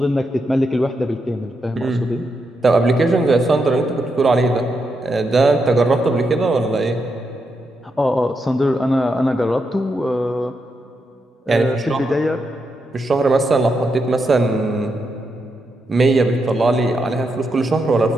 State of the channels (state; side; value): normal; both; correlation 0.83